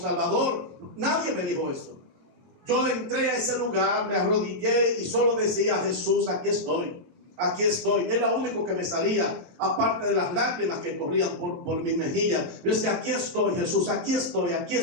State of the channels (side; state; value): left; late; 22 ms